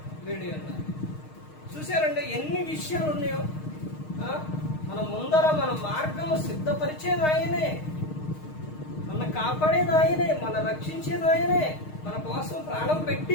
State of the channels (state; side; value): late; right; 6.5 ms